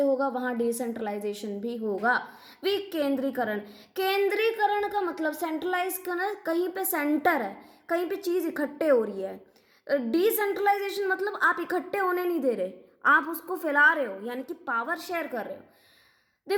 होगा वहाँ डिसेंट्रलाइजेशन भी होगा। विकेंद्रीकरण, केंद्रीकरण का मतलब सेंट्रलाइज करना, कहीं पे सेंटर है, कहीं पे चीज इकट्ठे हो रही है। डिसेंट्रलाइजेशन मतलब आप इकट्ठे होने नहीं दे रहे, आप उसको फैला रहे हो, यानी कि पावर शेयर कर रहे हो।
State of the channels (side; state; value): both; identical; correlation 1.00